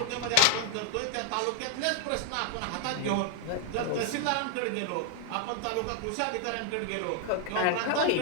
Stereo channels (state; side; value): different; both; correlation 0.00